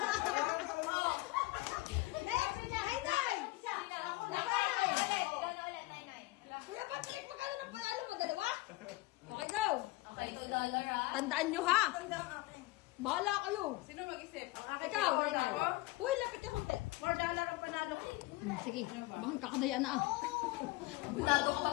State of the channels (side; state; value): right; quieter; 20.2 dB